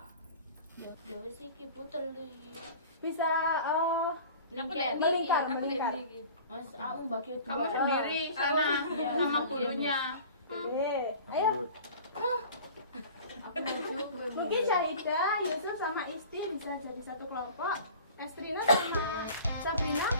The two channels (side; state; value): both; inverted; correlation -0.42